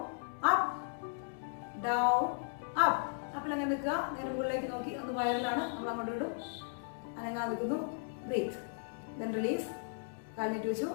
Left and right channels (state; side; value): silent; right; digital silence